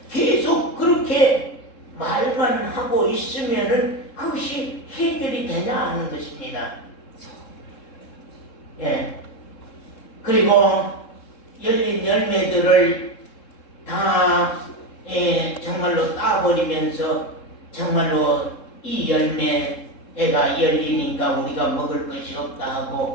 계속 그렇게 말만 하고 있으면은 그것이 해결이 되냐 하는 것입니다. 예. 그리고 열린 열매들을 다 정말로 따버리면서 정말로 이 열매가 열리니까 우리가 먹을 것이 없다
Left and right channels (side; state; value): right; late; 3.7 ms